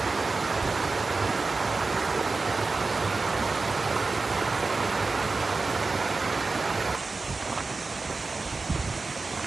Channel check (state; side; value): quieter; left; 3.9 dB